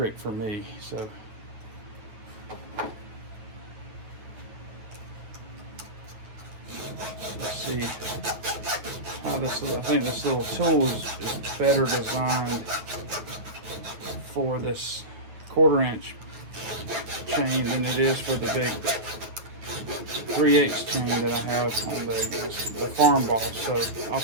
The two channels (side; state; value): left; late; 9.2 ms